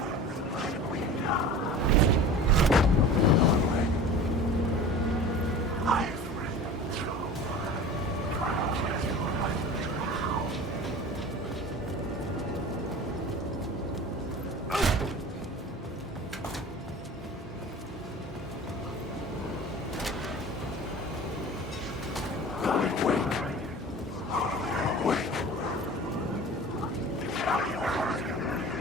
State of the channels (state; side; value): normal; both; correlation 0.38